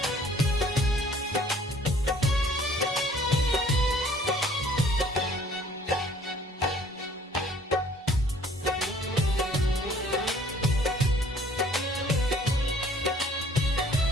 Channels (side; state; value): both; normal; correlation 0.57